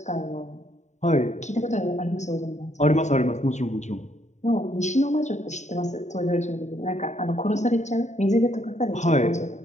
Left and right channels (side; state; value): right; late; 0.34 ms